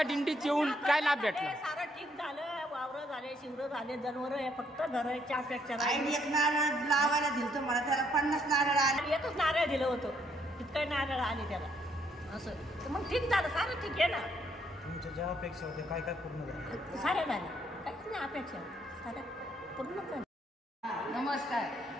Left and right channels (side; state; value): both; normal; correlation 0.71